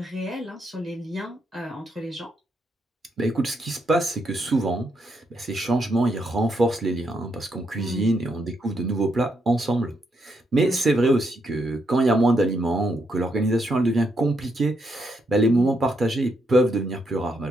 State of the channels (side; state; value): both; normal; correlation 0.78